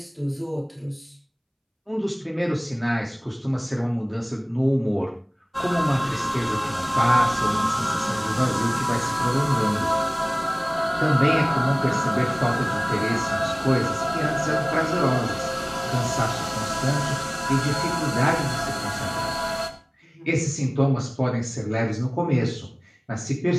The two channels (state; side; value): identical; both; correlation 1.00